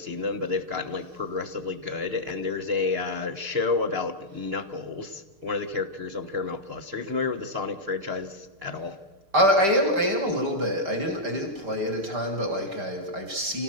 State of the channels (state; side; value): late; left; 6.6 ms